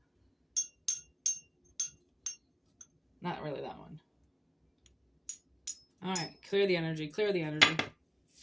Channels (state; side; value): identical; both; correlation 1.00